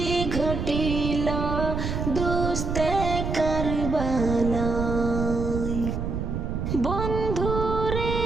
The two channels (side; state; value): right; noise; rumble, 3 dB below the sound